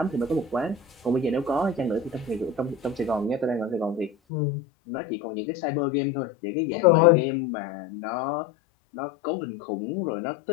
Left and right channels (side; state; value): right; drops out; at 4.1 s